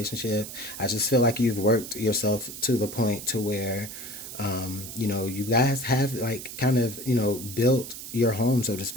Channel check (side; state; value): right; noise; hiss, 10 dB below the sound